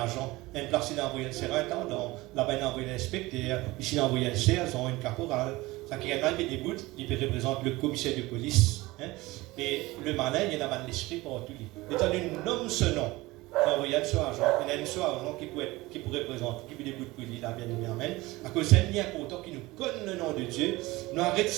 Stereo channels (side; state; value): left; quieter; 20.4 dB